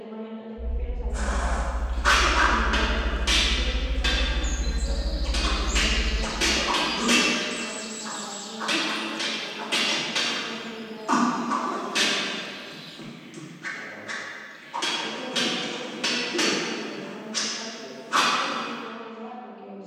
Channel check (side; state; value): both; identical; correlation 1.00